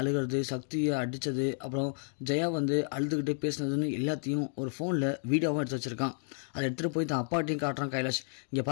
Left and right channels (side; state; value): right; silent; 55 dB below the other